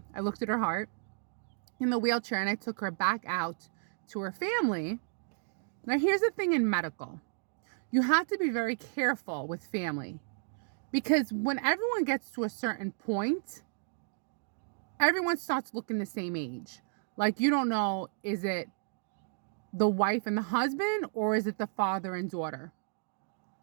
looked at her heart in the wheelchair and I took her back out to her family. Now, here's the thing in medical. You have to be very careful with family because when everyone gets to a certain point, everyone starts looking the same age. Like, you don't know, is it the wife and the husband or is it the father and daughter?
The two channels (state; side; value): silent; left; digital silence